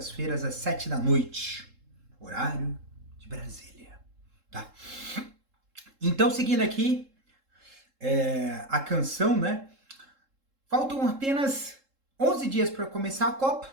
às 7 da noite, horário de Brasília, tá? Então, seguindo aqui a canção, né? Faltam apenas 11 dias para começar a Copa.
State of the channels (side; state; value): left; late; 3.7 ms